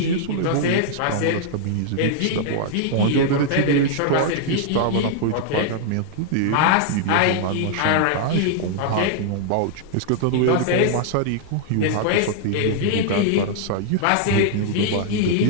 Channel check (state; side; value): different; both; correlation -0.01